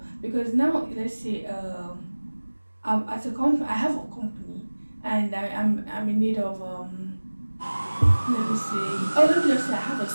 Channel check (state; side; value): inverted; both; correlation -1.00